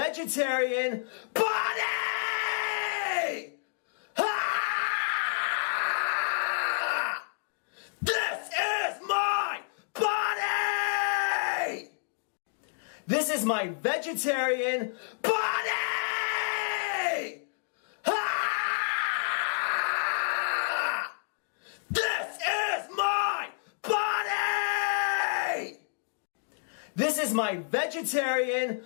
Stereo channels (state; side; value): silent; right; digital silence